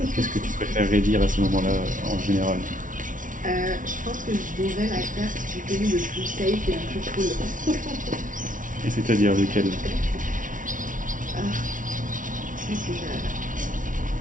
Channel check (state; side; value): late; left; 0.38 ms